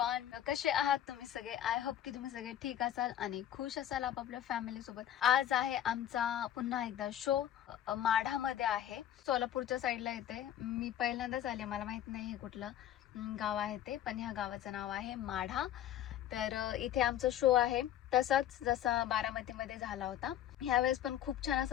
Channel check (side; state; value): right; quieter; 11.3 dB